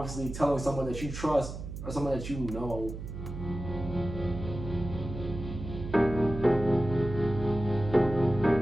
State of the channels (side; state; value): right; noise; hum, 8 dB below the sound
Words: telling someone that you trust or someone that you know